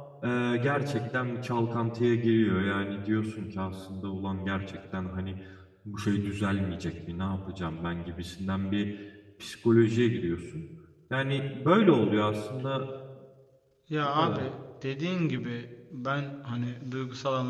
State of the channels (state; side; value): identical; both; correlation 1.00